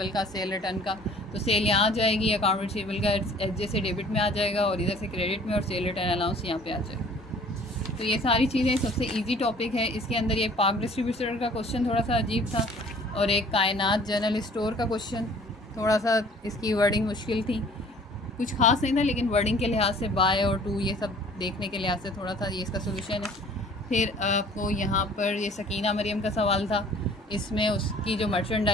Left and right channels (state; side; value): normal; both; correlation 0.52